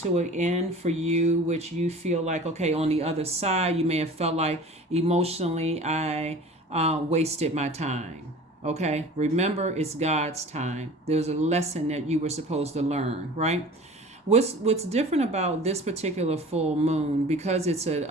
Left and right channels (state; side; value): normal; both; correlation 0.41